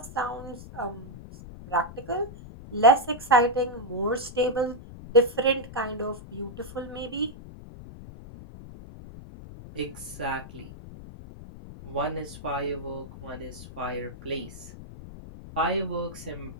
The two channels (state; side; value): noise; left; rumble, 14 dB below the sound